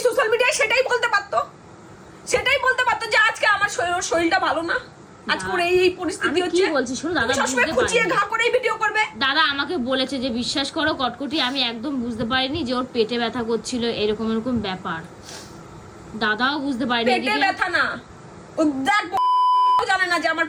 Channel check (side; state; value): both; identical; correlation 1.00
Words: সোশ্যাল মিডিয়ায় সেটাই বলতে পারতো, সেটাই বলতে পারতো যে আজকে আমার শরীরটা ভালো না, আজকে ওর এই পরিস্থিতি আমি কি হচ্ছে। বলছি শোনো, দাদা তুমি সবসময় বুঝতে খুঁচিয়ে পারেনি। ঘা করেই ভিডিও করবে। দাদা আমাকে বলেছে যে বিশ্বাস করো কটকটি, আমি একদম বুঝতে পারিনি যে ওর পেটে ব্যথা করছিল, এরকম এরকম ব্যাপার। দাদাও বুঝতে পারেনি। পেটে এদিকে ব্যথা না, ও দেখ জানে না যে আমার